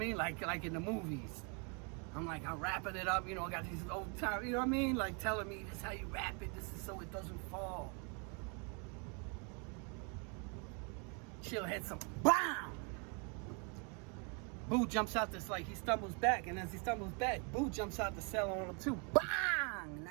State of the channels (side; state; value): left; quieter; 35.3 dB